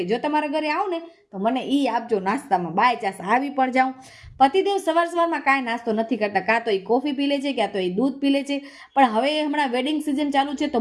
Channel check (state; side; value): identical; both; correlation 1.00